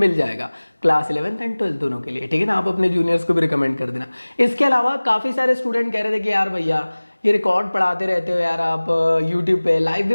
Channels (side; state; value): both; inverted; correlation -1.00